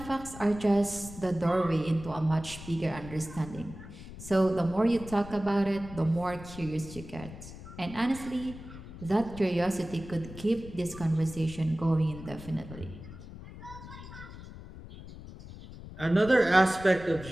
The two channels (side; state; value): left; noise; rumble, 14 dB below the sound